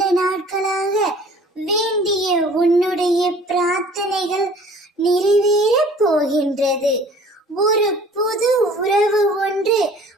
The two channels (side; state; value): both; normal; correlation 0.50